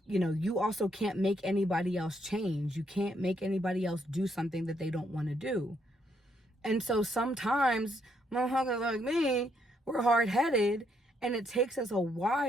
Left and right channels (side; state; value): both; normal; correlation 0.74